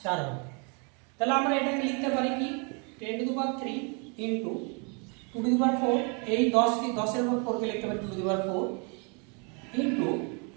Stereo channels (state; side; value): quieter; left; 35.1 dB